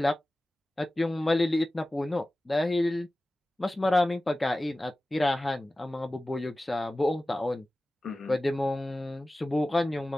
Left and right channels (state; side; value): normal; both; correlation 0.96